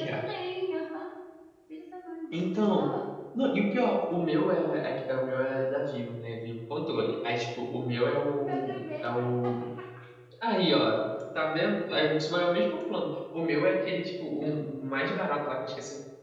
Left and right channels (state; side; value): identical; both; correlation 1.00